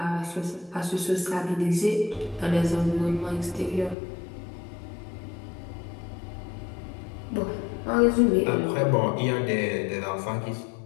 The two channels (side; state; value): right; drops out; at 4.0 s